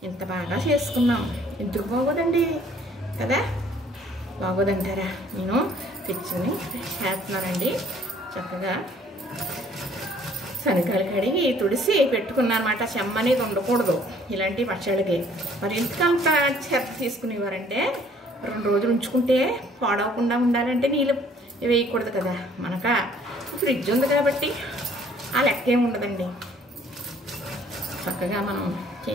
ఇంత బాగా చేసుకున్నాం, ఎందుకు బాగోదండి కదా? బాగోదంటారా? నేను తెచ్చుని చేస్తున్నానండి. చక్కగా శనగలు కడిగి తుడిసి పెట్టుకున్నాను అనమాట. చెమ్మ అనేది ఉండకూడదు ఇలాంటి పచ్చడికి. మరి ఎందుకంత చెత్త తీసుకునేవారంటే 2 రోజులు ఉంచుకుంటే పాడవకుండా ఉండాలంటే నీళ్ళు వేయకూడదు కదా. మనక ఫ్రిడ్జ్ ఉంది కాబట్టి ఆ లెక్క ఏమి ఉండదండి. చక్కగా మనం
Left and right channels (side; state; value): both; normal; correlation 0.59